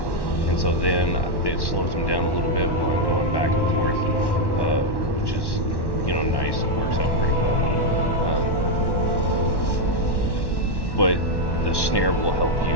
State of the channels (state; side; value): late; right; 1.1 ms